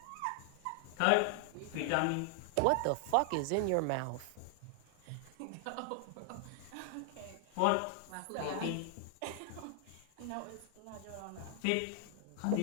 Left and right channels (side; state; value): both; different; correlation 0.00